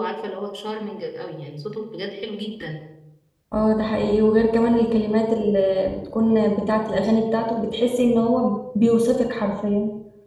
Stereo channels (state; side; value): identical; both; correlation 1.00